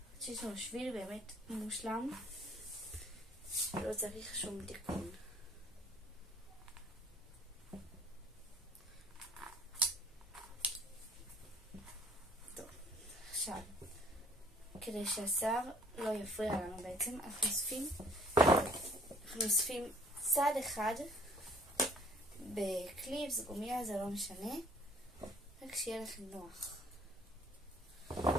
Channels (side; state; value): both; normal; correlation 0.56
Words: שיש לנו שביל באמת מושלם, לא צריך שום תיקון. טוב, עכשיו, כדי שהשיער לא יפריע לנו בעצם, אנחנו אוספים צד אחד בקליפס, גומיה, זה לא משנה, רק שיהיה לכם נוח.